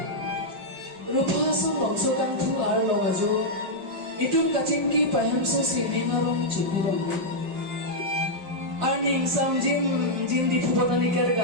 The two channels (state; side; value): late; left; 5.4 ms